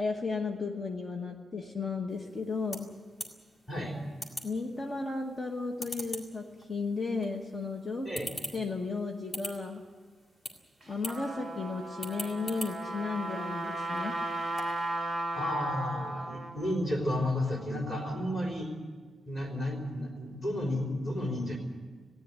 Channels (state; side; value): normal; both; correlation 0.83